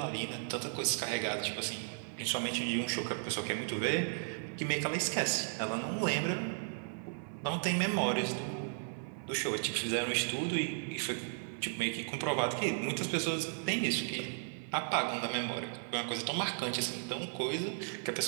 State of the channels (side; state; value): left; silent; 54 dB below the other